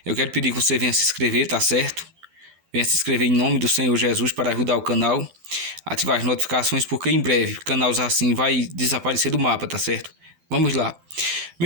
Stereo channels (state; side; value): late; left; 12 ms